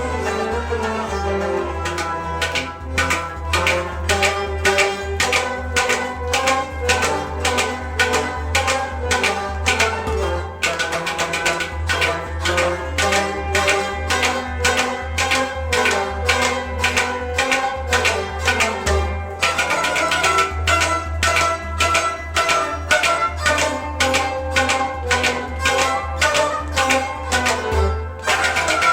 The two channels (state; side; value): identical; both; correlation 1.00